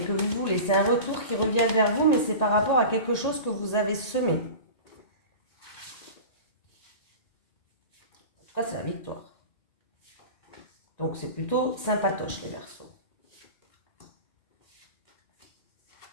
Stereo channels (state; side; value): late; right; 1.9 ms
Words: que vous voulez. C'est un retour qui revient vers vous, mais c'est par rapport à quelque chose que vous avez semé. En tout cas, c'est la victoire. Donc, c'est plutôt sympatoche, les Verseaux.